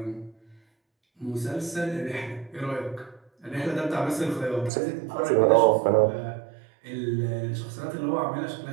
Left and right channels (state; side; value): drops out; left; at 4.7 s